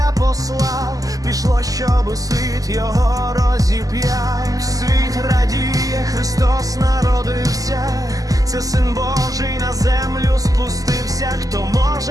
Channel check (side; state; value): left; late; 0.17 ms